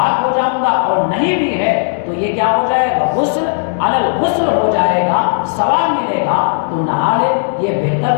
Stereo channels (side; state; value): right; silent; digital silence